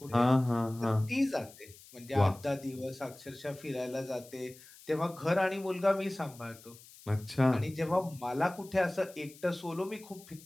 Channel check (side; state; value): left; noise; hiss, 21 dB below the sound